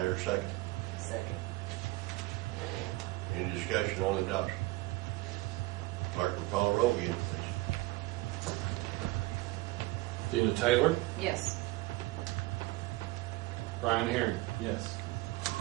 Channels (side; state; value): left; quieter; 20.0 dB